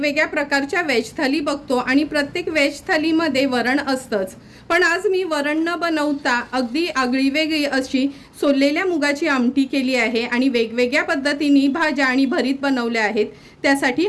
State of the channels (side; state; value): both; identical; correlation 1.00